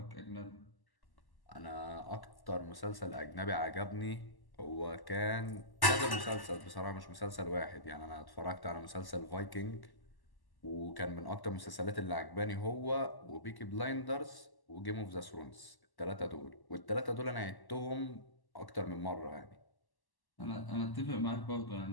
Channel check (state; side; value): late; right; 1.1 ms